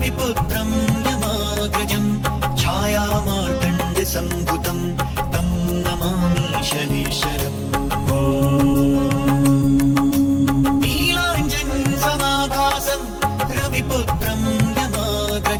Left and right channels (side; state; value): both; identical; correlation 1.00